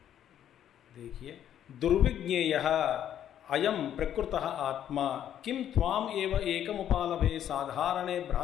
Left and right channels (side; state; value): right; quieter; 10.4 dB